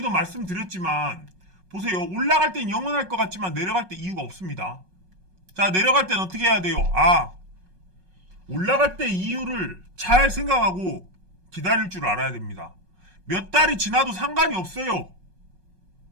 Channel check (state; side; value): late; left; 5.4 ms